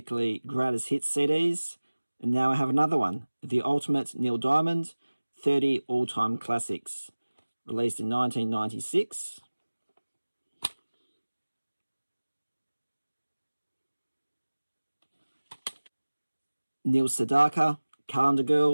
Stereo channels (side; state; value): both; inverted; correlation -1.00